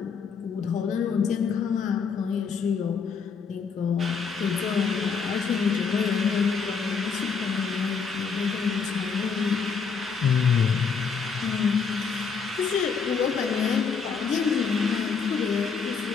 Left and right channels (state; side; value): quieter; right; 5.6 dB